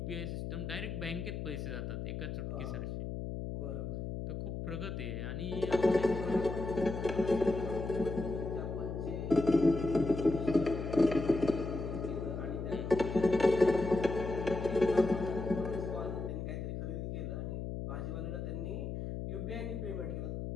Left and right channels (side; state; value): left; noise; hum, 5 dB below the sound